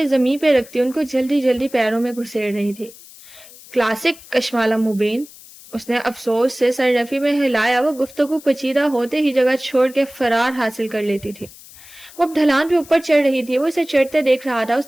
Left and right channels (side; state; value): left; noise; hiss, 20 dB below the sound